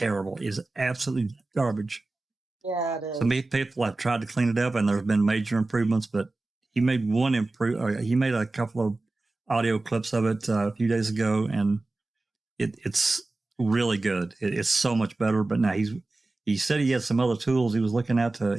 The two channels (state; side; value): quieter; left; 3.1 dB